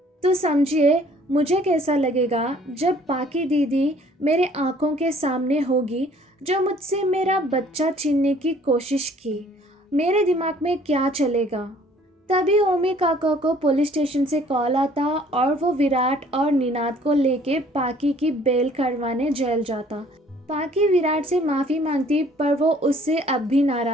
तो समझिए मुझे कैसा लगेगा जब पाकी दीदी मेरे आंखों के सामने होगी, जो मुझसे मेरा बच्चा छीनने की कोशिश की। मेरे दिमाग में क्या चलेगा। तभी ओमी काका को पुलिस स्टेशन से कॉल आता और वो विराट और निनाद को लेके पाकी की बेल करवाने जेल जाता। पाकी विराट से माफ़ी मांगती पर वो उससे अब भी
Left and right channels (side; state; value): both; normal; correlation 0.57